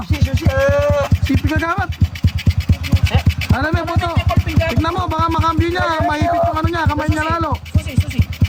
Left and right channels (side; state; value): both; identical; correlation 1.00